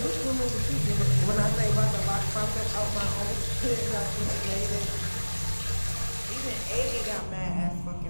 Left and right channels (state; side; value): inverted; both; correlation -1.00